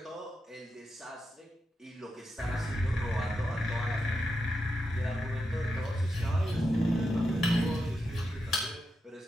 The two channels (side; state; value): both; normal; correlation 0.87